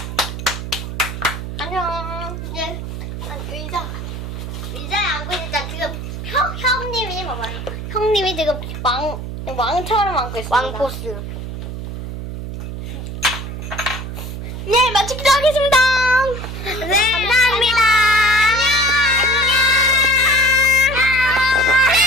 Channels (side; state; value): right; noise; hum, 7 dB below the sound